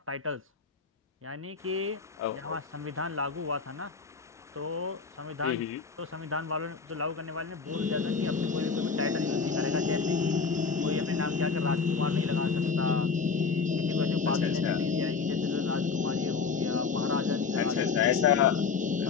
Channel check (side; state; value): right; quieter; 5.1 dB